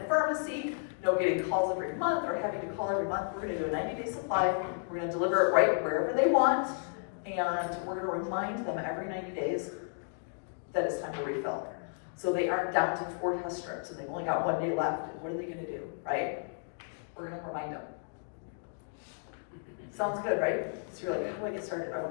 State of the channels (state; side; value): silent; right; digital silence